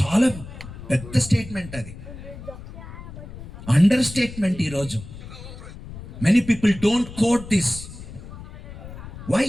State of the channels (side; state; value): left; noise; rumble, 13 dB below the sound